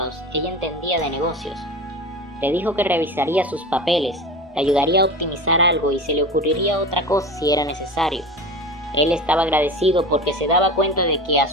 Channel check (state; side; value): normal; both; correlation 0.31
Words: ella entendía de negocios. Le dijo que revisaría sus papeles, le ayudaría a optimizar algo y se le ocurriría otra cosa si era necesario. Él estaba agradecido porque se daba cuenta de que a